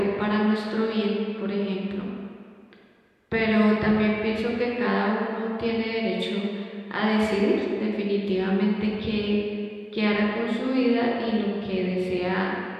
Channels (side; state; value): both; identical; correlation 1.00